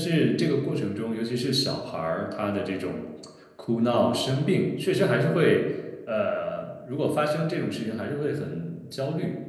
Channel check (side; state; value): both; identical; correlation 1.00